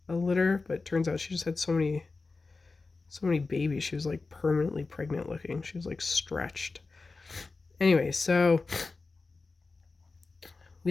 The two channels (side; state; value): right; quieter; 3.9 dB